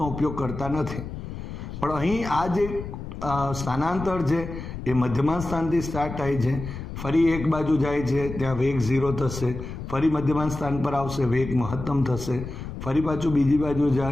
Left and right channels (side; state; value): left; noise; rumble, 9 dB below the sound